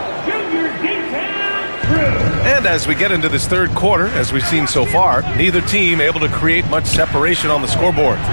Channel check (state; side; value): inverted; both; correlation -1.00